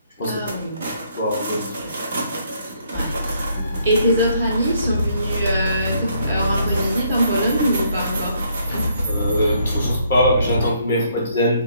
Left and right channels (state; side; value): inverted; both; correlation -0.69